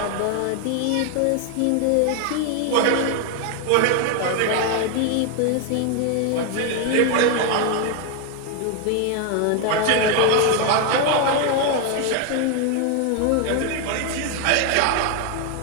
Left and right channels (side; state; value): both; different; correlation 0.01